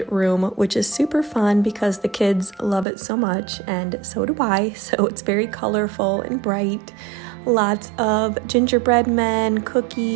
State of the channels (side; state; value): left; drops out; at 2.9 s